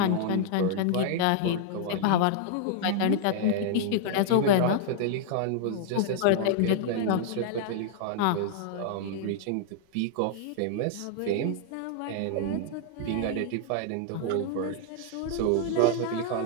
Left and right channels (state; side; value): different; both; correlation -0.01